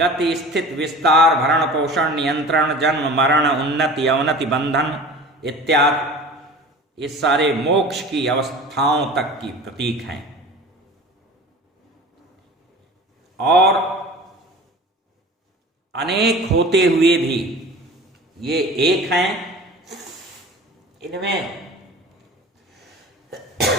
स्थित, विस्तार, भरण पोषण, नियंत्रण, जन्म मरण, उन्नति अवनति, बंधन इत्यादि, ये सारे मोक्ष की अवस्थाओं तक की प्रतीक हैं। और अनेक होते हुए भी ये एक हैं, इनमें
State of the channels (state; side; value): normal; both; correlation 0.39